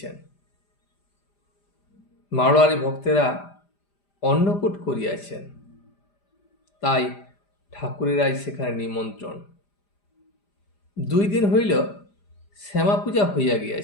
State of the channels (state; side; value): late; right; 5.0 ms